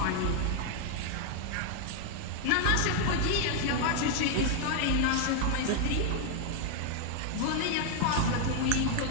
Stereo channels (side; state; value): both; different; correlation 0.01